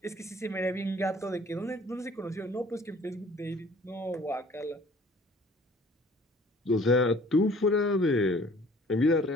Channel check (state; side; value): normal; both; correlation 0.53